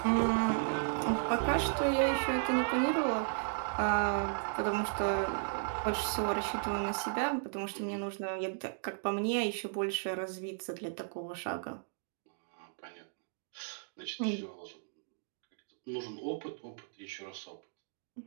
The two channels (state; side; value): silent; left; digital silence